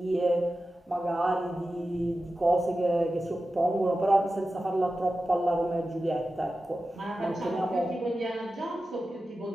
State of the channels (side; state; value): both; normal; correlation 0.93